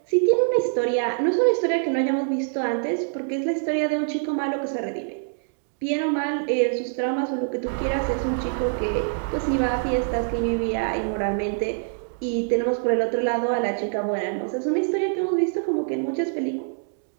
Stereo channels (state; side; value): silent; left; digital silence